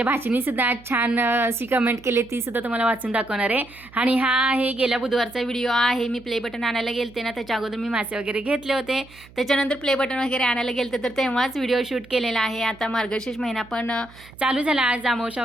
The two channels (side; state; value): right; noise; hum, 23 dB below the sound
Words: भाचीने सुद्धा छान अशी कमेंट केली, ती सुद्धा तुम्हाला वाचून दाखवणार आहे. आणि हा आहे गेल्या बुधवारचा व्हिडिओ आहे. मी प्ले बटन आणायला गेलते ना, त्याच्या अगोदर मी मासे वगैरे घेतले होते. त्याच्यानंतर प्ले बटन वगैरे आणायला गेलते तर तेव्हाच व्हिडिओ शूट केलेला आहे. आता मार्गशीर्ष महिना पण चालू झाला, आज अमावस्या